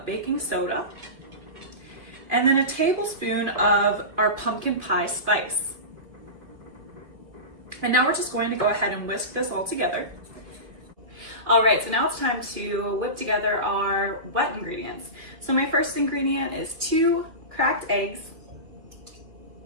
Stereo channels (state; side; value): late; left; 2.8 ms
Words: baking soda, and then a tablespoon of our pumpkin pie spice. And now we're just going to go ahead and whisk this all together. All right, so now it's time to whip together our wet ingredients. So my first ingredient is 2 cracked eggs.